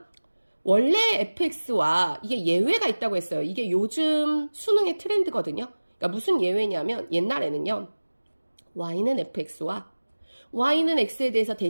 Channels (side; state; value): both; inverted; correlation -1.00